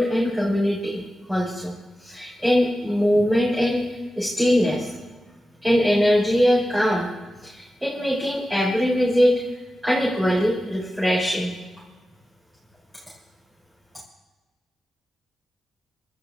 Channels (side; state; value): both; normal; correlation 0.93